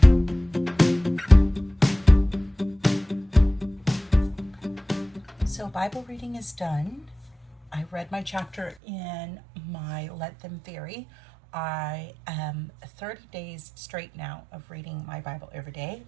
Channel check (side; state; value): left; drops out; at 8.8 s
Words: So Bible reading is done. I read my chapter in my Let Them Vary. I am 30 days straight now of reading my Bible every day,